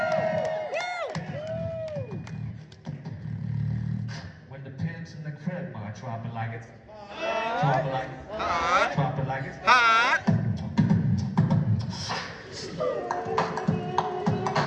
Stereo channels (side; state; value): both; identical; correlation 1.00